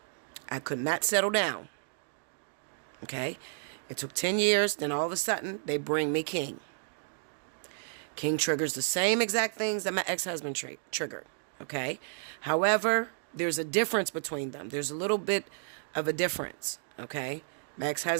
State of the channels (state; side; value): silent; left; digital silence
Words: I could not settle down. Okay? It took 10 years. Then all of a sudden, they bring me King. King triggers the same exact things that my ex-husband triggered. Okay? However, there's a difference between them. There's a little bit of a difference. Okay? My